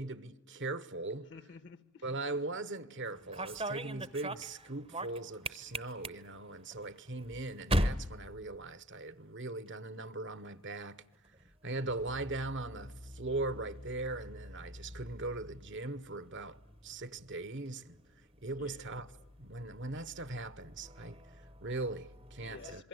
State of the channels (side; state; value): both; normal; correlation 0.33